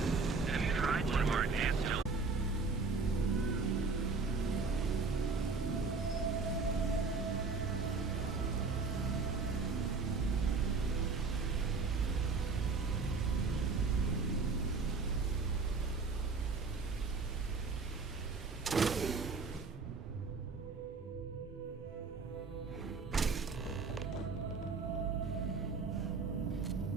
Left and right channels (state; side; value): quieter; left; 4.4 dB